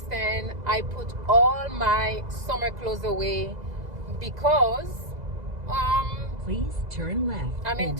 I put all my summer clothes away because please turn left. I'm in and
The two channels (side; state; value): left; late; 2.0 ms